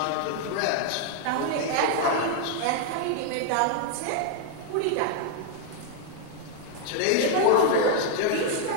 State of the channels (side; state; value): both; different; correlation 0.01